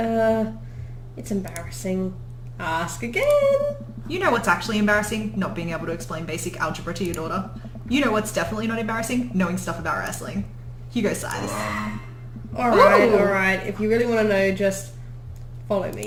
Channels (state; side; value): identical; both; correlation 1.00